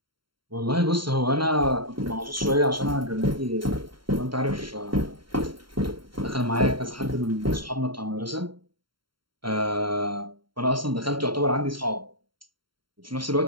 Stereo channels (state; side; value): late; left; 0.73 ms